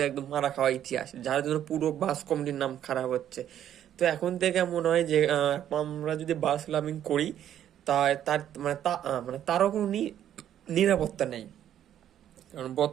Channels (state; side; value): quieter; left; 10.7 dB